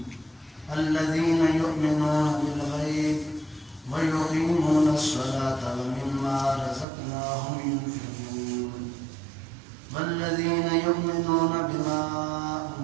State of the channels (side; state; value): left; drops out; at 6.9 s